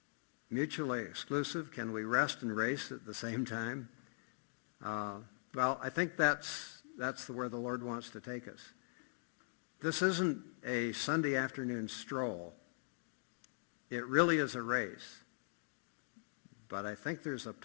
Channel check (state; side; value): silent; right; digital silence